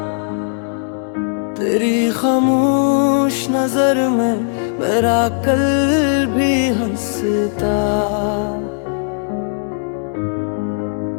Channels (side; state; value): right; silent; digital silence